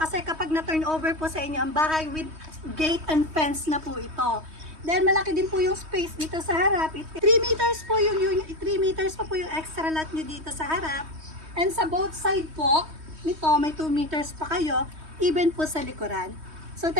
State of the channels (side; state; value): left; late; 3.2 ms